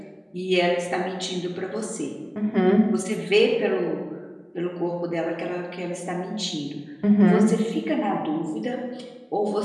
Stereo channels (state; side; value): identical; both; correlation 1.00